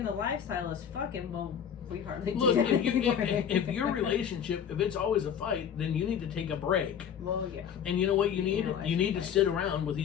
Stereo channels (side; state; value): right; quieter; 8.3 dB